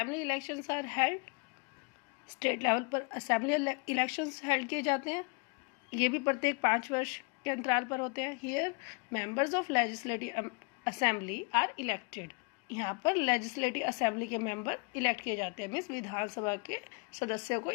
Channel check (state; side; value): quieter; right; 32.2 dB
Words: elections are held. State level पर assembly elections held किए जाते हैं. ये भी प्रत्येक 5 वर्ष के अंतराल पर होते हैं. Here, members of legislative assembly are elected. यहाँ पर लेजिस्लेटिव असेंबली के मेंबर इलेक्ट किए जाते हैं, मीन्स विधानसभा के सदस्यों को